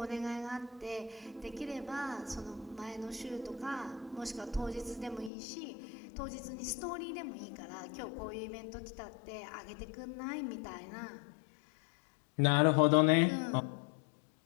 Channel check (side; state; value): right; drops out; at 5.3 s